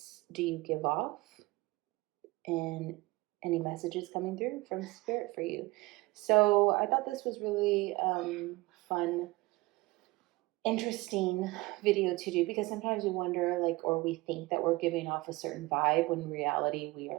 do you give off and any messages coming through from Spirit for you. So I thought this was really fun, interesting video to do because sometimes we wonder or we think that we're giving off a certain vibe when in reality we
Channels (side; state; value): left; quieter; 21.7 dB